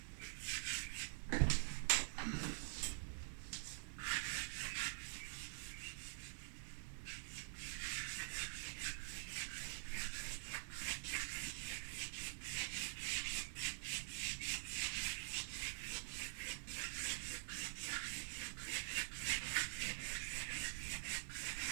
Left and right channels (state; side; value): silent; left; digital silence